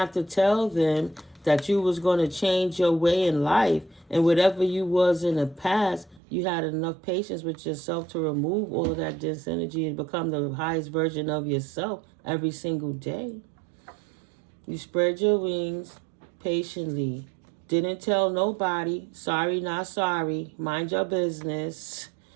to tell them that you was going to change your way in life, and whatever you was in the past, you had enough patience with yourself to remove all of that dense energy and become the highest version of yourself every single day. You spread your wings patiently. Didn't tell nobody. Sorry, not sorry. Mind your business.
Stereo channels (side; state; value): left; drops out; at 6.2 s